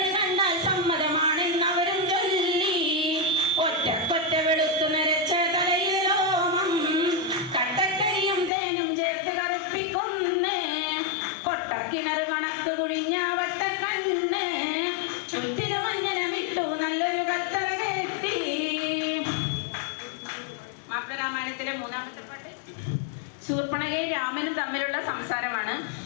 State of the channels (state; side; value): drops out; right; at 8.5 s